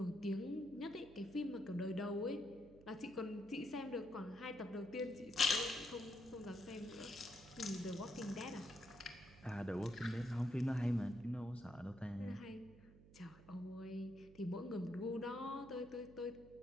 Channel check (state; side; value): noise; right; hum, 20 dB below the sound